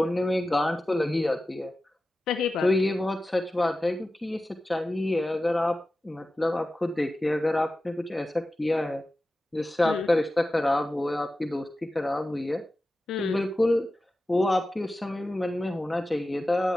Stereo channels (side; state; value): both; normal; correlation 0.94